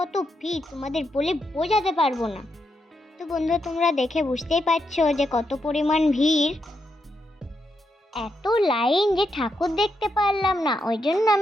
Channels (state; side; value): normal; both; correlation 0.82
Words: কত ভিড় তোমাদের বলে বোঝাতে পারবো না। তো বন্ধুরা, তোমরা দেখে বুঝতেই পারছো যে কত পরিমাণ ভিড়। এত লাইন যে ঠাকুর দেখতে পারলাম না, ওই জন্য